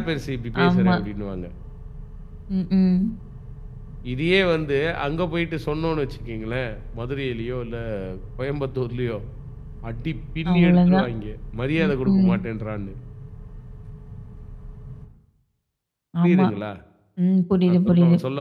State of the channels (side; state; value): both; identical; correlation 1.00